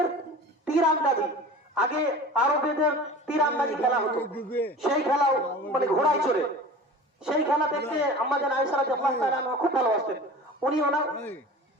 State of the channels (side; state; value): both; normal; correlation 0.38